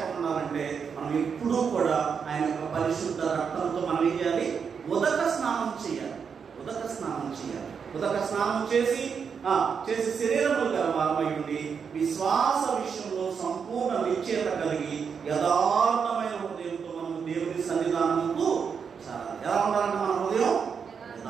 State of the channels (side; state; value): left; quieter; 6.4 dB